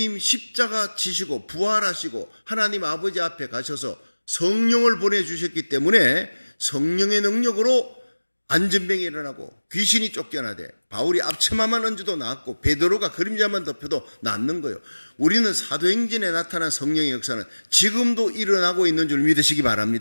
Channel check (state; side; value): inverted; both; correlation -1.00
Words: 십자가 지시고 부활하시고 하나님 아버지 앞에 가셔서 성령을 보내주셨기 때문에 성령의 능력으로 안전병이 일어나고 귀신이 쫓겨나되 바울이 앞치마만 얹어도 낫고 베드로가 그림자만 덮여도 낫는 거예요. 우리는 사도행전에 나타난 성령의 역사는 지금도 일어나고 있는 줄 믿으시기